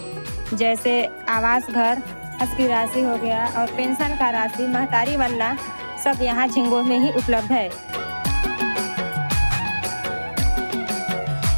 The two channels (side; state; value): both; inverted; correlation -1.00